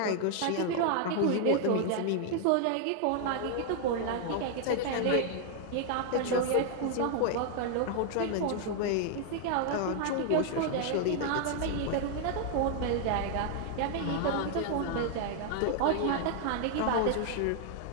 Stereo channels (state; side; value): different; both; correlation 0.00